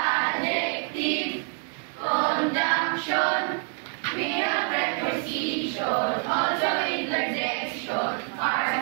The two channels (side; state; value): left; quieter; 39.4 dB